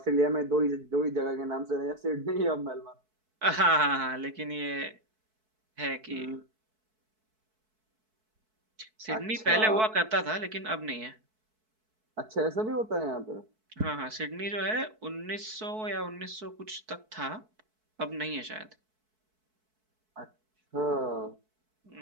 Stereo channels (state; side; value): late; left; 4.6 ms